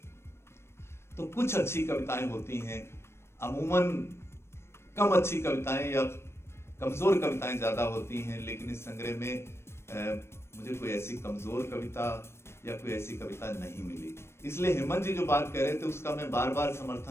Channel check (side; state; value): right; late; 0.12 ms